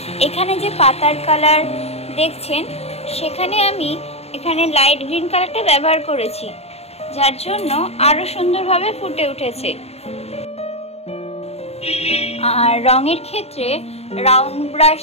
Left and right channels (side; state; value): right; late; 0.30 ms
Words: এখানে যে পাতার কালার দেখছেন সেখানে আমি এখানে লাইট গ্রিন কালারটা ব্যবহার করেছি, যার জন্য আরো সুন্দরভাবে ফুটে উঠেছে। আর রঙের ক্ষেত্রে রাউন্ড ব্রাশ